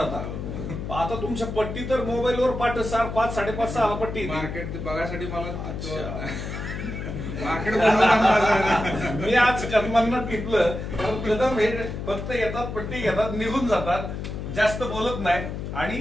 आता तुमच्या पट्टी तर मोबाईलवर पाठ 5, 5:30, 6 पट्टी. मार्केट बघायसाठी मला मार्केट मी आज कदमांना टिपलं, कारण कदम हे फक्त येतात, पट्टी घेतात, निघून जातात, जास्त बोलत नाही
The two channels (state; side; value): noise; left; hum, 6 dB below the sound